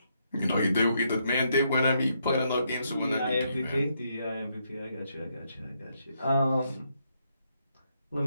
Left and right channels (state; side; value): inverted; both; correlation -0.77